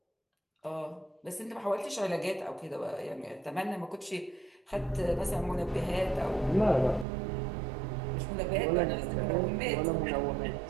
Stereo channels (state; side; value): drops out; left; at 7.1 s